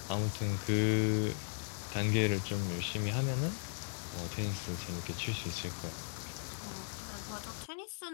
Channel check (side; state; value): right; silent; digital silence